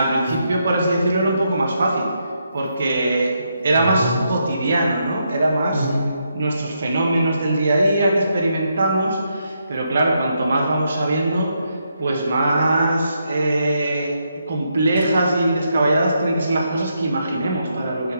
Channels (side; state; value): both; inverted; correlation -0.80